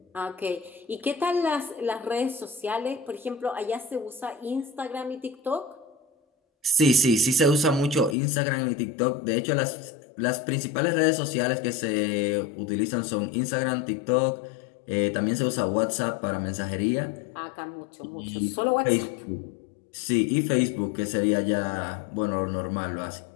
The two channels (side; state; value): right; drops out; at 8.2 s